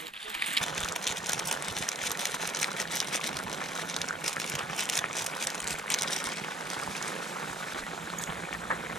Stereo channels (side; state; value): both; normal; correlation 0.59